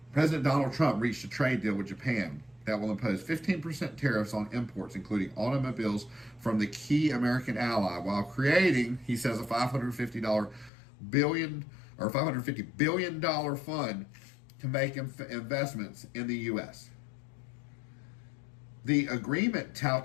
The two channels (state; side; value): drops out; right; at 10.7 s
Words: President Donald Trump reached a trade deal with Japan that will impose 15% tariffs on imports, including automobiles, from the key American ally, while creating, he says, a $550 billion fund to make investments in the U.S. The agreement